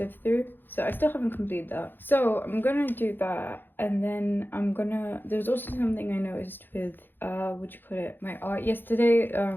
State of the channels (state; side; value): late; right; 0.096 ms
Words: through, so I still haven't completed that. So I'm gonna do that, and then there's also something I noticed with what you call it, my art yesterday,